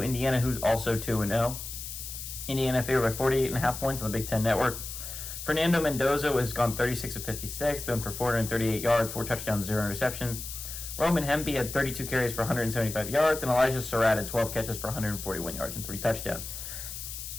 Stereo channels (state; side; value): noise; left; hiss, 8 dB below the sound